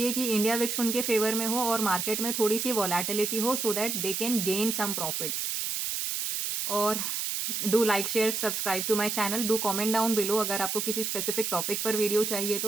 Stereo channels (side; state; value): right; noise; hiss, 1 dB below the sound